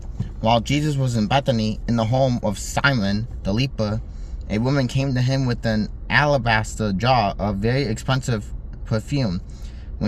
While Jesus was in Bethany, in the home of Simon the leper, a woman came to him with an alabaster jar of very expensive perfume.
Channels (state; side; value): identical; both; correlation 1.00